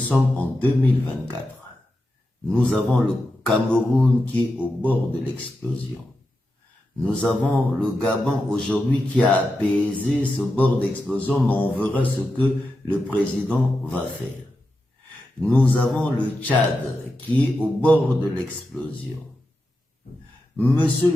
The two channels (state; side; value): normal; both; correlation 0.89